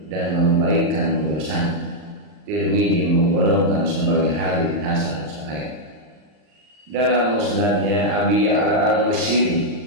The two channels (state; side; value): late; left; 39 ms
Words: dan membaikkan urusan. Tirmidzi menggolongkan sebagai hadits hasan sahih. Dalam musnadnya Abi Ya'la al-Musyiri